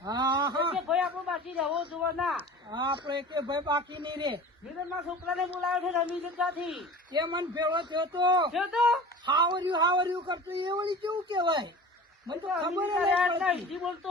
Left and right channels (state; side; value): normal; both; correlation 0.38